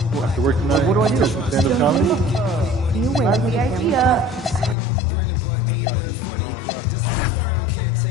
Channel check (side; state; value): right; drops out; at 4.8 s